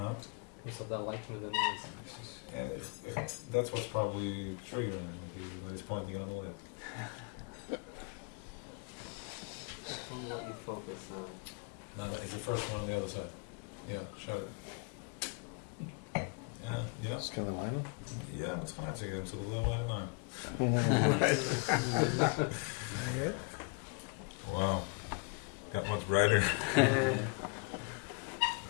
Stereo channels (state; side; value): quieter; right; 32.3 dB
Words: What's that like? That's what's probably triggering him, like he's pointing on the light. On what you focus on. No, it's the first one on the other side. Yeah, shut it. Yeah. It's kind of line. Ja, maar het gaat uitzeggen, ik zal het wel maar naar. Wow. Got much brighter.